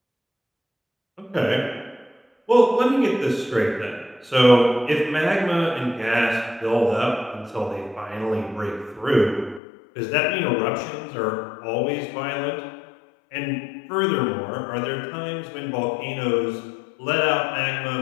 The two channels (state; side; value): drops out; right; at 9.6 s